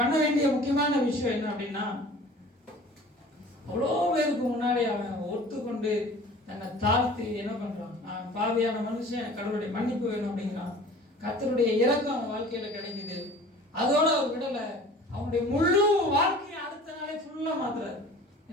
பண்ண வேண்டிய முக்கியமான விஷயம் என்ன அப்படின்னா, அவ்வளோ பேருக்கு முன்னாடி அவன் ஒத்துக்கொண்டு தன்னை தாழ்த்தி என்ன பண்றான், நான் பாவியான மனுஷன், கடவுளுடைய மன்னிப்பு வேணும் அப்படிங்கிறான். கர்த்தருடைய இரக்கம் அவன் வாழ்க்கையில கிடைக்குது. அதோட அவர் விடல, அவனுடைய முழு வாழ்க்கையை அடுத்த நாளே ஃபுல்லா மாத்துறாரு.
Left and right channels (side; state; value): both; normal; correlation 0.45